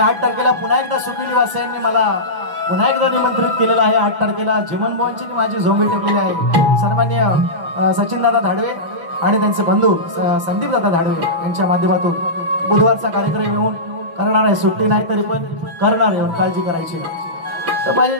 तारखेला पुन्हा एकदा सुखिली वासियांनी मला पुन्हा एकदा निमंत्रित केलेलं आहे. 8 तारखेला जिमन भवनची माझी झोंबी ठेवलेली आहे. सन्मान्य सचिनदादा धाडवे आणि त्यांचे बंधू संदीपदादा धाडवे यांच्या माध्यमातून बुधवारचा कार्यक्रम येऊन करणार आहे. सुट्टी नाही तरी पण करणार आहे, काळजी करायची नाही. तर माझे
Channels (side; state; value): left; late; 5.9 ms